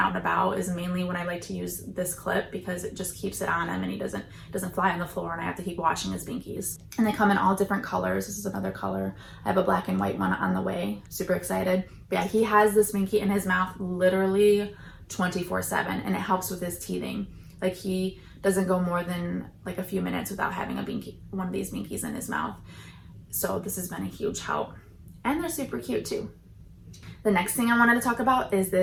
and about is mainly when I like to use this clip, because it just keeps it on him and he doesn't fly on the floor and I have to keep washing his Binkies. And they come in all different colors. This is another color. I have a black and white one on the way. Super excited. But yeah, he has this Binky in his mouth literally 24/7, and it helps with his teething. Like he doesn't go more than like a few minutes without having a Binky, one of these Binkies in his mouth. So this has been a huge help. And they're super cute too. The next thing I wanted to talk about is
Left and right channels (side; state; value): both; identical; correlation 1.00